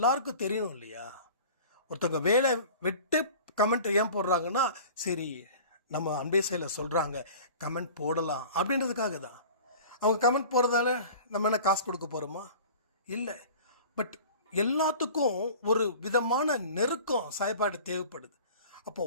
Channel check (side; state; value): both; inverted; correlation -0.41